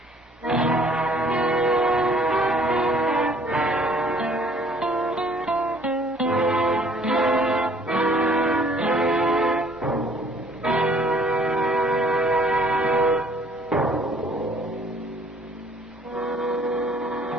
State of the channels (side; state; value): both; normal; correlation 0.58